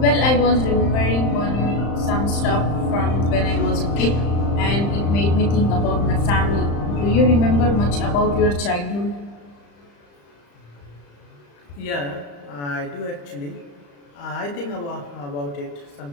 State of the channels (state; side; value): late; right; 35 ms